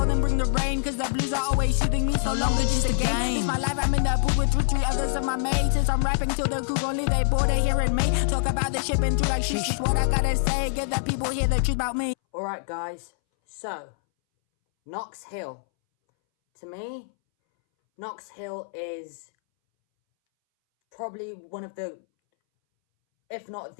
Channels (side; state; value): right; silent; 61 dB below the other